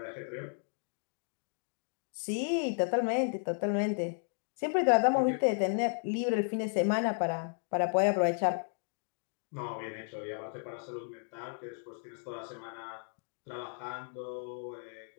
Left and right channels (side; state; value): right; silent; 55 dB below the other